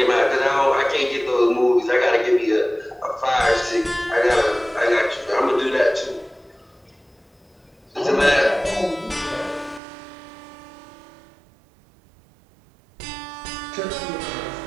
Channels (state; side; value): drops out; left; at 9.8 s